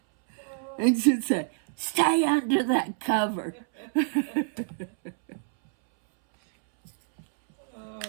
And she'd say, "Stay under that cover."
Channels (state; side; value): silent; left; 60 dB below the other